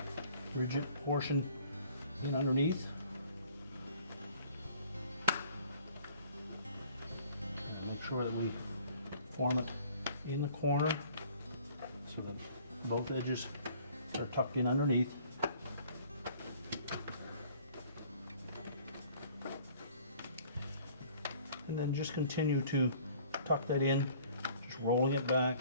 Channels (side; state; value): both; inverted; correlation -0.54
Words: rigid portion in underneath. And make sure that we form it in the corner so that both edges are tucked in underneath. And then just continue to tuck that in, just rolling it back,